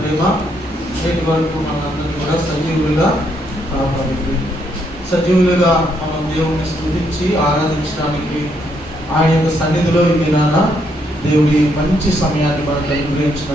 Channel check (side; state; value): both; normal; correlation 0.74